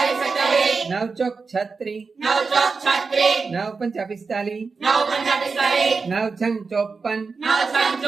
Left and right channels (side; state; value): left; quieter; 4.6 dB